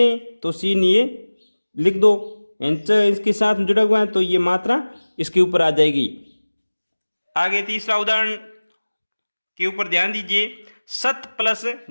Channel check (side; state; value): both; inverted; correlation -1.00